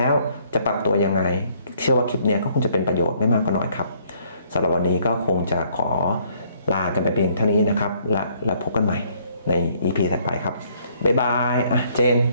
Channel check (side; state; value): both; inverted; correlation -0.65